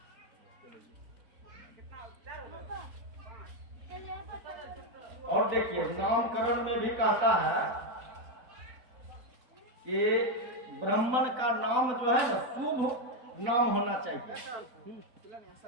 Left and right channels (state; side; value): late; left; 4.0 ms